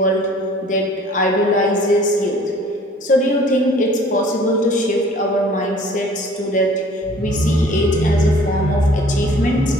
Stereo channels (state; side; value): normal; both; correlation 0.52